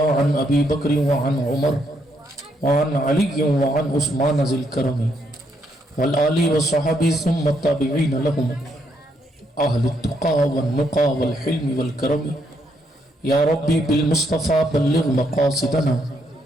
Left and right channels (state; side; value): normal; both; correlation 0.75